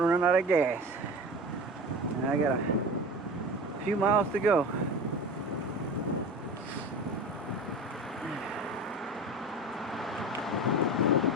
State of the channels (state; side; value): normal; both; correlation 0.32